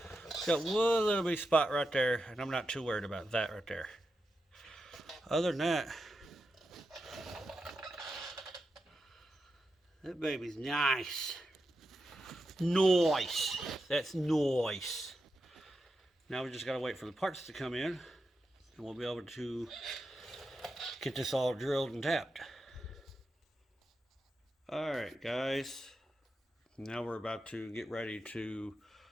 got one little bitty spot right there, and I'm not too worried about that right there. Other than that baby's nice. Nice. That's nice. Now we just gotta wait for the parts to come in, and we'll be able to get this all drilled and tapped. Alright guys, now we're about to get ready to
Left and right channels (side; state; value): both; normal; correlation 0.88